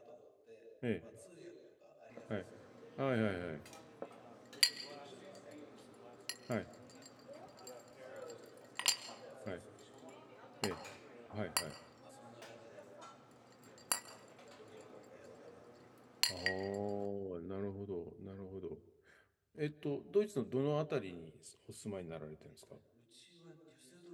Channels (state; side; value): identical; both; correlation 1.00